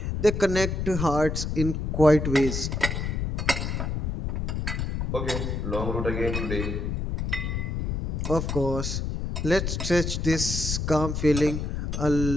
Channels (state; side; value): noise; left; rumble, 2 dB below the sound